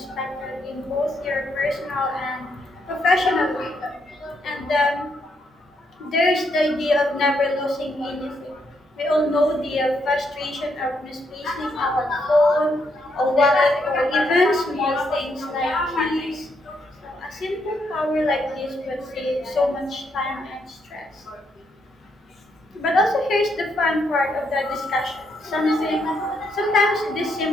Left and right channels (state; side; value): normal; both; correlation 0.77